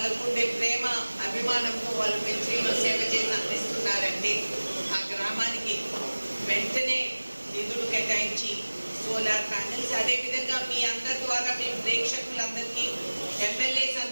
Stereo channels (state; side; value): inverted; both; correlation -1.00